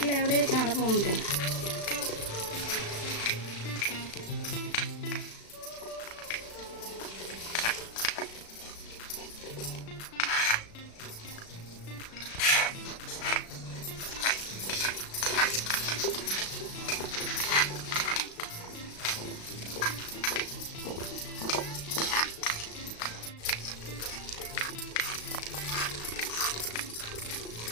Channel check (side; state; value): right; late; 36 ms